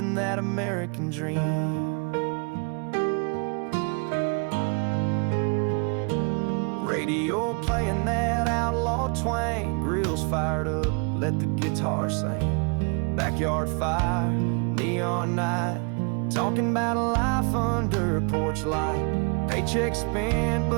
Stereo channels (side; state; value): left; quieter; 34.6 dB